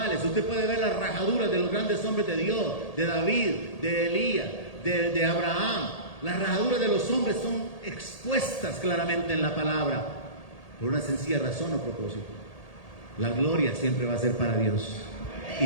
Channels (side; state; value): right; late; 1.8 ms